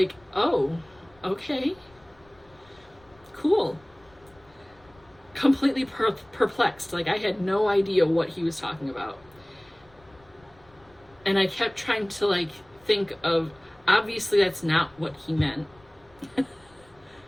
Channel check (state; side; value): noise; left; rumble, 29 dB below the sound